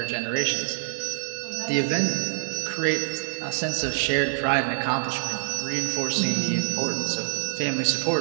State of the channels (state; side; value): silent; left; digital silence